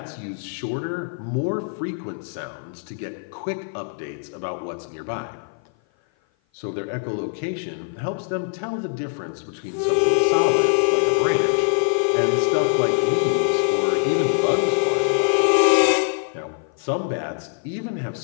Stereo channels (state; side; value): silent; right; 55 dB below the other